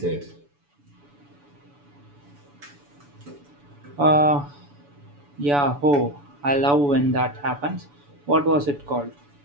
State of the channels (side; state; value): left; late; 7.0 ms